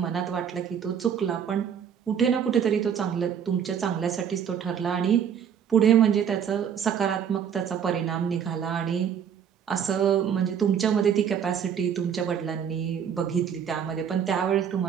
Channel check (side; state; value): left; quieter; 8.1 dB